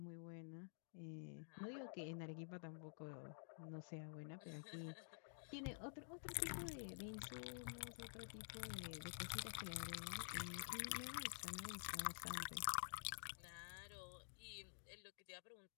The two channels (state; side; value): silent; right; digital silence